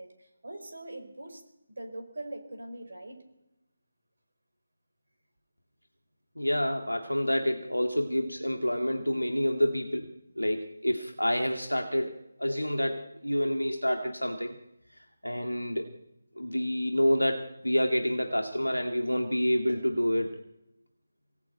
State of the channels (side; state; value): both; inverted; correlation -0.99